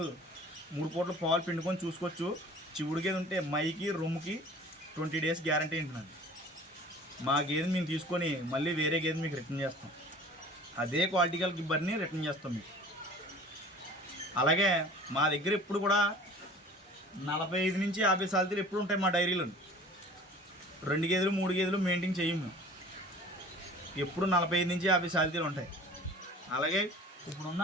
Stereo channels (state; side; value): normal; both; correlation 0.45